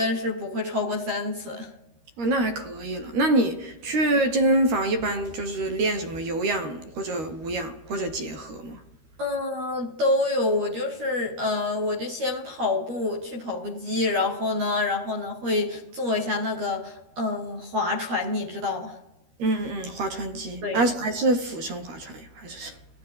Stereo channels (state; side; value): late; left; 13 ms